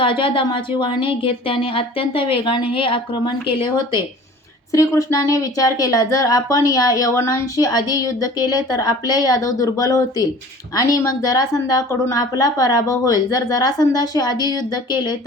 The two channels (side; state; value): both; normal; correlation 0.45